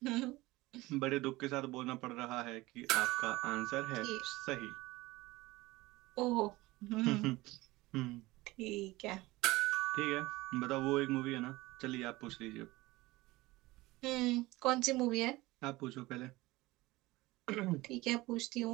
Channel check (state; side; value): quieter; left; 19.9 dB